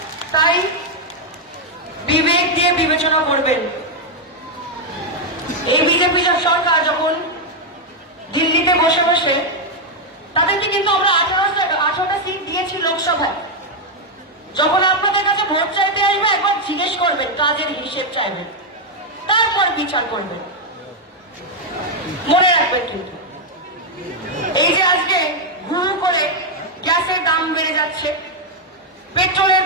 তাই বিবেক দিয়ে বিবেচনা করবেন। এই বিজেপি সরকার যখন দিল্লিতে বসে বসে, তাদেরকে কিন্তু আমরা 18টা সিট দিয়েছি লোকসভায়। যখন আপনাদের কাছে ভোট চাইতে আসবে একবার জিজ্ঞেস করবেন, কাজের হিসেব চাইবেন, তারপর বিচার করবেন। মনে রাখবেন কিন্তু এই যে আজকে হুড় করে গ্যাসের দাম বেড়ে যাচ্ছে, পেট্রোলের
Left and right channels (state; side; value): normal; both; correlation 0.01